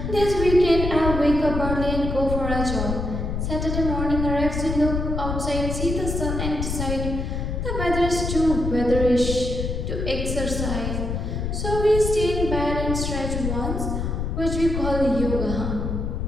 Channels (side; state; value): left; noise; rumble, 2 dB below the sound